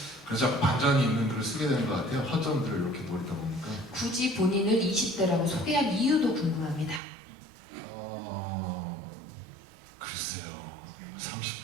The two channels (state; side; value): drops out; left; at 7.0 s